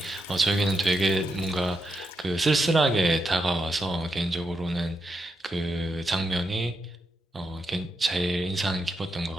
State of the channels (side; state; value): both; normal; correlation 0.84